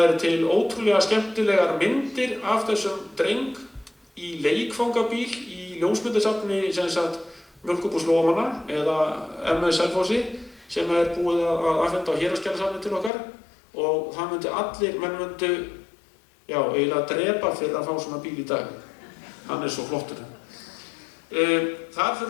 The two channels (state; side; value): drops out; right; at 13.1 s